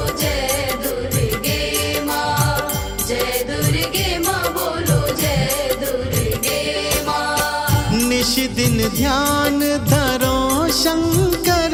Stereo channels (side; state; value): both; identical; correlation 1.00